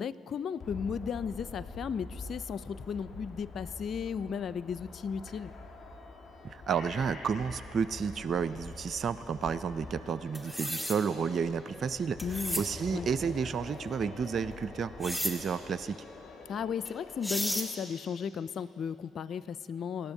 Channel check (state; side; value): normal; both; correlation 0.75